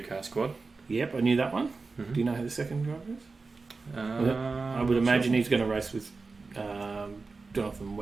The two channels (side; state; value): left; quieter; 4.0 dB